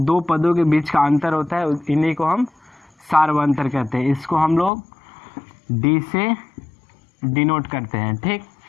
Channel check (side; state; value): right; drops out; at 4.7 s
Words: पदों के बीच का अंतर होता है इन्हीं को हम सार्व अंतर कहते हैं। इसको हम लोग D से डिनोट करते हैं। ठीक,